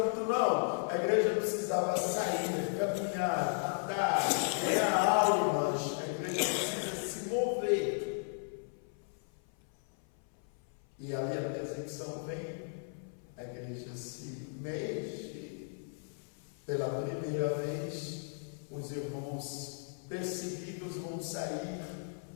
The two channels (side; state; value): right; silent; 54 dB below the other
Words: não. A igreja precisava sair, caminhar, andar, ganhar almas. A igreja precisa se mover. E ali a perseguição vem, a igreja se mexe. Pela primeira vez, os irmãos perseguidos vão sair